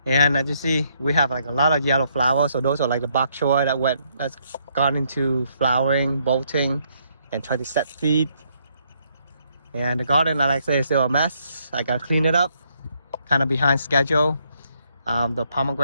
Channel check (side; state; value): both; inverted; correlation -0.72